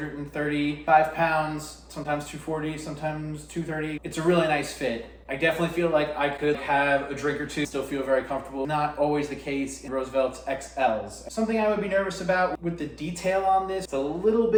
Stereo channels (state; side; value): identical; both; correlation 1.00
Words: pounds, sometimes 240, sometimes 230. It's a really nice fit. I definitely feel like I could have a drink or two, still feel very comfortable. Not always the case in Roosevelt's XLs. Something I would be nervous about with the detail on this, it's a little